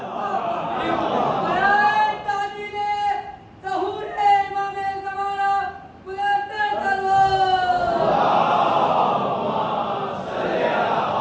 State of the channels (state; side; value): identical; both; correlation 1.00